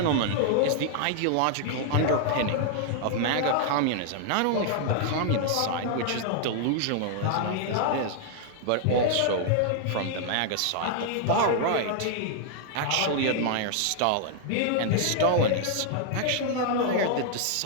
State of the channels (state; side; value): different; both; correlation 0.00